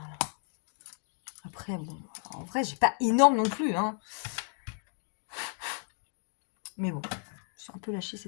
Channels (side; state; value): right; silent; 56 dB below the other